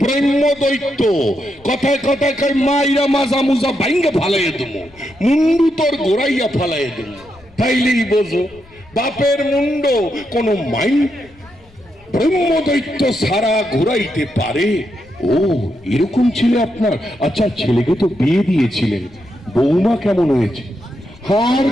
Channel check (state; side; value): noise; left; rumble, 27 dB below the sound